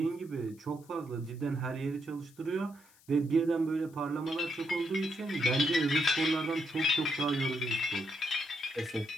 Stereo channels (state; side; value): noise; left; hiss, 28 dB below the sound